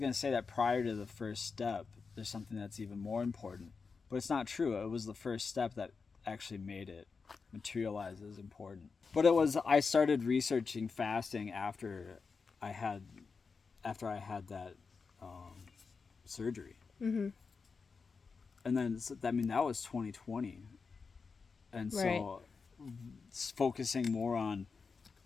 to say that prior to the first step, there's something that's even more important. But it's not true. It was the first step that actually made it materialize as important. But I started researching fasting after I had that surgery. Mm-hmm. And then, that was 2020. And so focusing more on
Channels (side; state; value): right; quieter; 5.0 dB